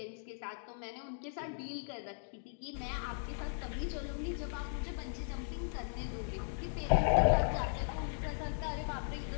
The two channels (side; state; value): right; silent; digital silence